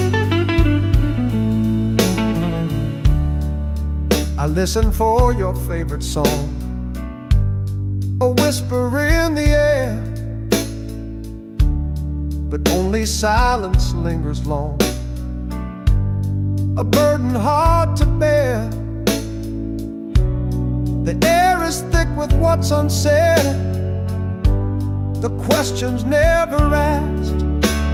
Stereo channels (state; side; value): identical; both; correlation 1.00